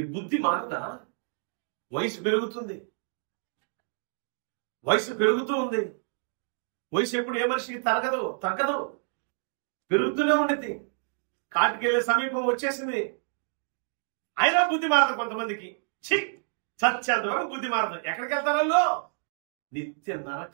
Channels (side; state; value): left; silent; 58 dB below the other